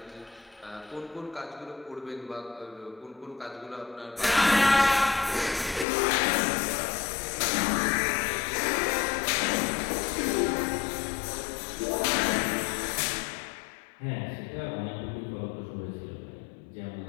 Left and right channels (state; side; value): drops out; right; at 5.9 s